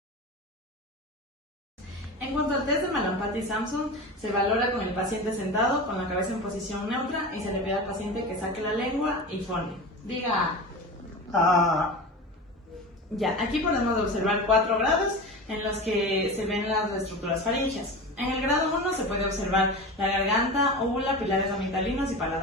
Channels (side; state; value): both; normal; correlation 0.29